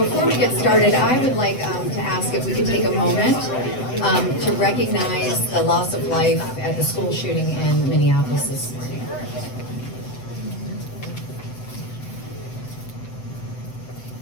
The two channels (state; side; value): late; right; 7.8 ms